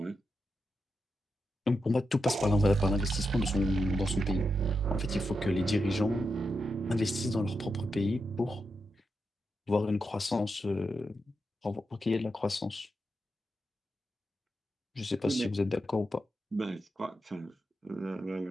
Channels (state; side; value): normal; both; correlation 0.86